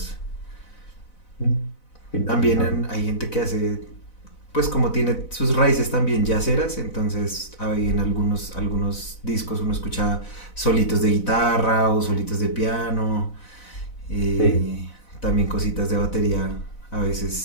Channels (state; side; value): late; right; 4.0 ms